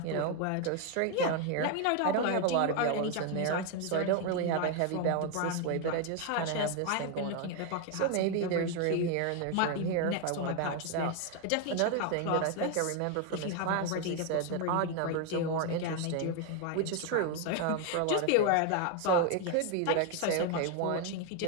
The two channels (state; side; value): different; both; correlation 0.01